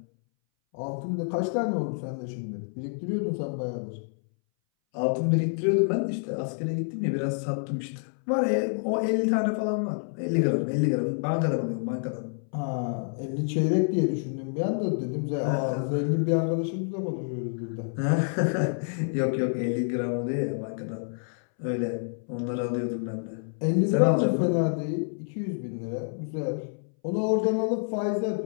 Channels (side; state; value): right; silent; 59 dB below the other